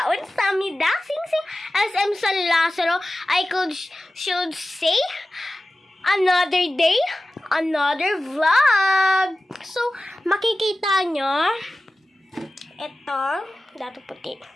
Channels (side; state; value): both; normal; correlation 0.96